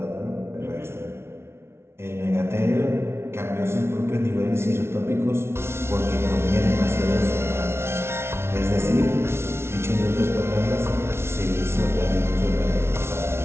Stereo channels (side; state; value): left; late; 0.12 ms